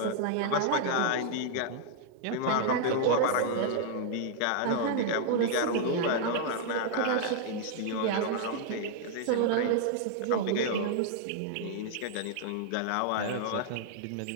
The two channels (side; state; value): both; different; correlation -0.01